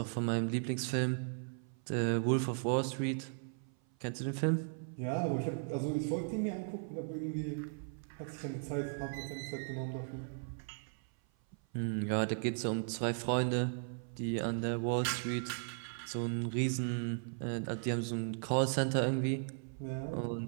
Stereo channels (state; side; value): silent; left; 53 dB below the other